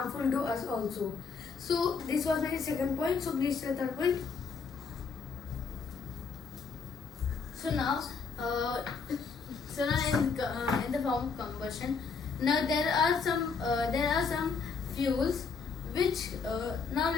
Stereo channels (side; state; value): right; quieter; 5.3 dB